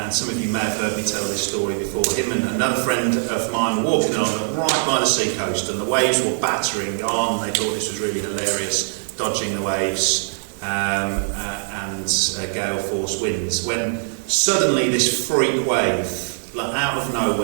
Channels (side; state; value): left; silent; 64 dB below the other